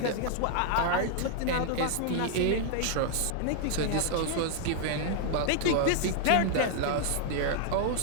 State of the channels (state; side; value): different; both; correlation 0.00